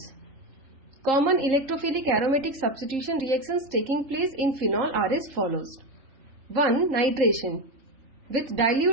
Common electrophilic aromatic substitution reactions taking place in phenol are as follows. 1. Nitration. With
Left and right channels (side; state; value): left; late; 3.8 ms